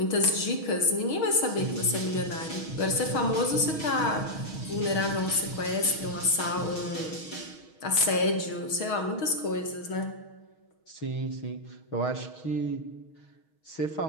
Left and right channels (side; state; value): right; late; 6.3 ms